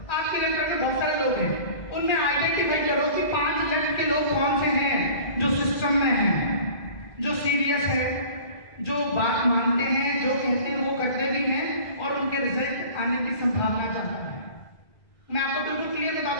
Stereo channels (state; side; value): late; right; 2.0 ms